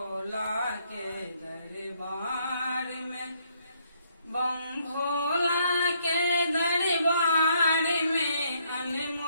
के दरबार में, बम भोला के दरबार में,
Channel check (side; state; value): both; inverted; correlation -0.71